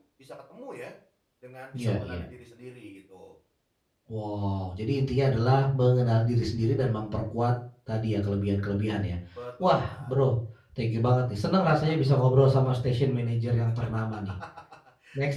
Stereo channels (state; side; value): identical; both; correlation 1.00